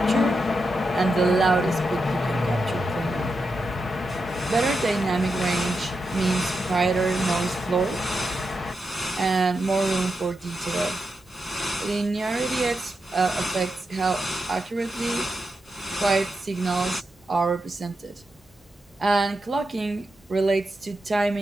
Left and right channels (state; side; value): normal; both; correlation 0.87